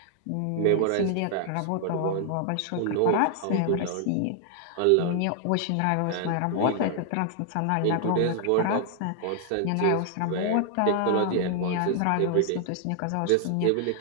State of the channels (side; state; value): both; different; correlation 0.00